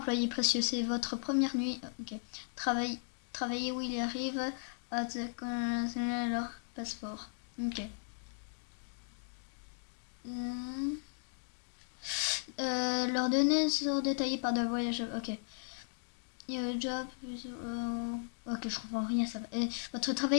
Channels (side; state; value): right; silent; digital silence